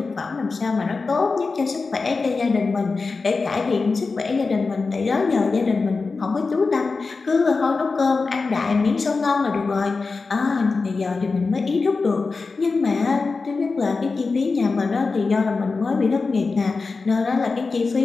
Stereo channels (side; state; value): right; quieter; 4.2 dB